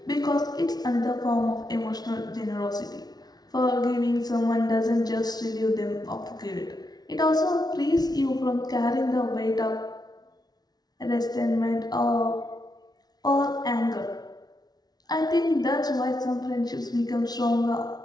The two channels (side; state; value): right; late; 0.19 ms